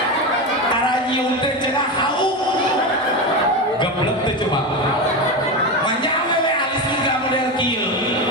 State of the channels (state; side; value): normal; both; correlation 0.18